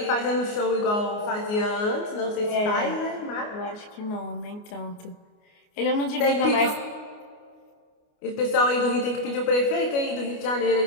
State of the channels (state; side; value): late; right; 29 ms